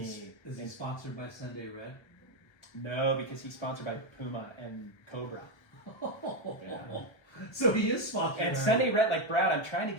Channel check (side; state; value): right; late; 1.3 ms